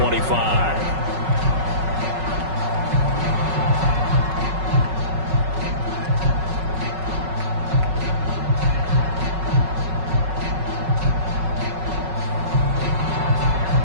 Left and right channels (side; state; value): left; late; 5.4 ms